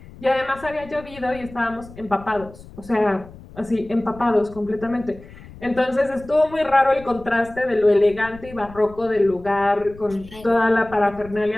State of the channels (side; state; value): left; noise; rumble, 19 dB below the sound